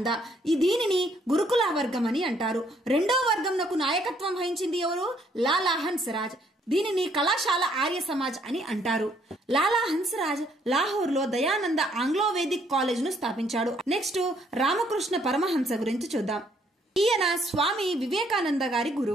దీనిని గురుకుల వర్గం అని అంటారు. రెండో వర్గంకు నాయకత్వం వహించింది ఎవరు? లాలా హన్స్రాజ్. దీనిని కళాశాల ఆర్య సమాజ్ అని అంటారు. లాలా హన్స్రాజ్ లాహోర్ లో దయానంద ఆంగ్లో వేదిక్ కాలేజ్ ను స్థాపించాడు. నెక్స్ట్ రామకృష్ణ పరమహంస గురించి చూద్దాం. ఈయన స్వామి వివేకానంద గారి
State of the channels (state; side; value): normal; both; correlation 0.67